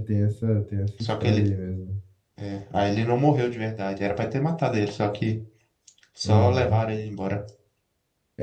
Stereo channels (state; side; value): identical; both; correlation 1.00